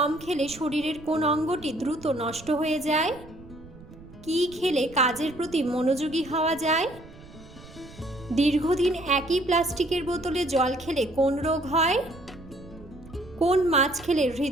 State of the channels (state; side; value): noise; right; rumble, 19 dB below the sound